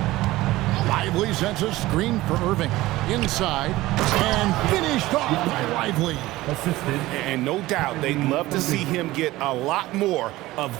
Lively sends a screen for Irving. Inside. And finished off by Lively. And no doubt they'd love to see him get a lot more of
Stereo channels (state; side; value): quieter; left; 17.8 dB